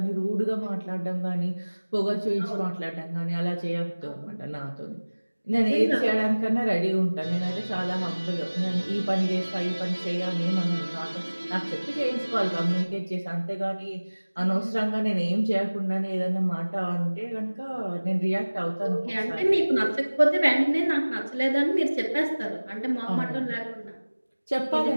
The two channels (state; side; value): inverted; both; correlation -1.00